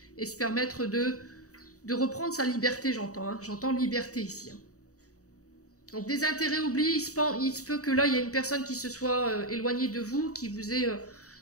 et se permettre de reprendre sa liberté, j'entends. Hein. J'entends liberté ici. Hein. Donc des intérêts oubliés, il se peut que là, il y a une personne qui se soit éloignée de vous, qui vous ait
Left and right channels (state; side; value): late; right; 0.66 ms